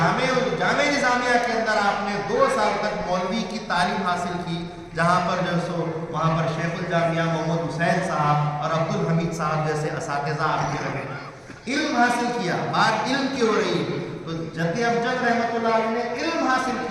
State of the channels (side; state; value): both; identical; correlation 1.00